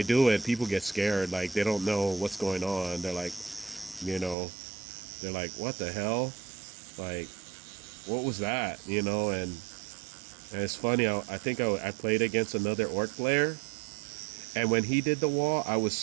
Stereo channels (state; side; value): drops out; left; at 4.4 s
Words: do it, people get scared, like they don't know what's going on. They're like, what the hell? Like, what was that? And it's funny, I think I played against another orc player, and when he did the wall, I was